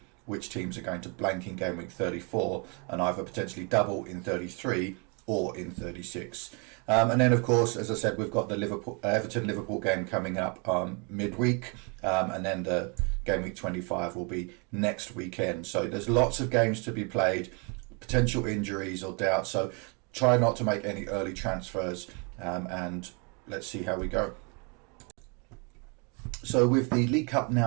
which teams are going to blank in game week 34 and either potentially double in 33 or in 36. And then, of course, as I said, we've got the Everton-Liverpool game coming up midweek, and then the game week 25 will be next weekend. So there's lots of games to be played, potential injuries or doubts. So try not to make any early transfers, and let's see how we go. So with the League Cup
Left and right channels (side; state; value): left; quieter; 33.7 dB